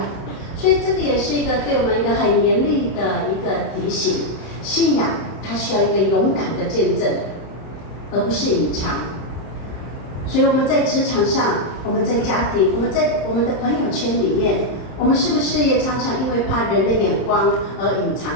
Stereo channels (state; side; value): late; right; 31 ms